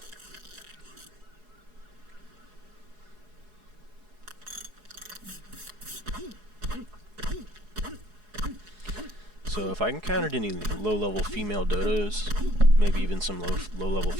So if I encountered any low-level female dodos, maybe even some low-level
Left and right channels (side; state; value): left; late; 4.7 ms